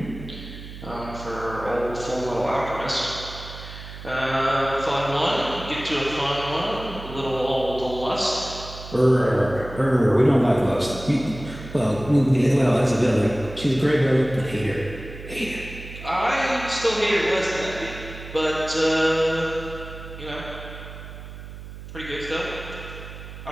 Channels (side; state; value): right; noise; hum, 13 dB below the sound